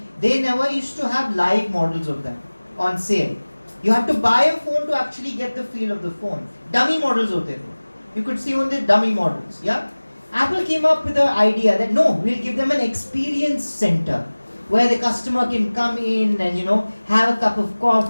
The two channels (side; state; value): both; inverted; correlation -1.00